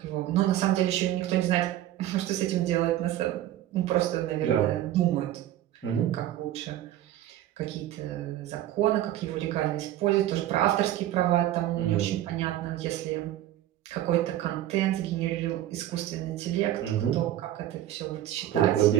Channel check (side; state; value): left; quieter; 13.1 dB